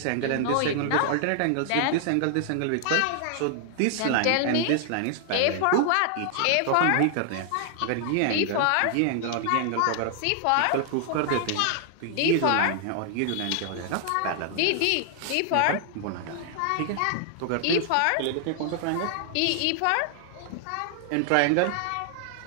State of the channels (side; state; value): both; different; correlation 0.00